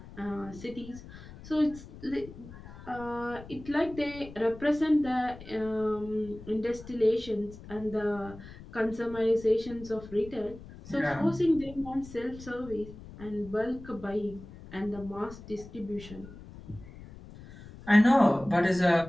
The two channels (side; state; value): left; noise; rumble, 16 dB below the sound